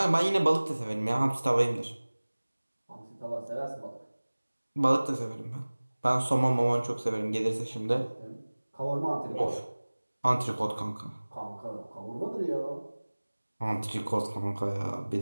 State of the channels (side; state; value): both; inverted; correlation -1.00